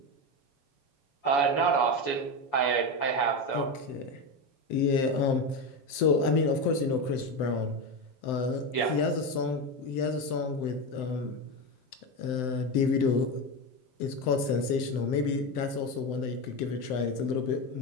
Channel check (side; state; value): right; late; 7.8 ms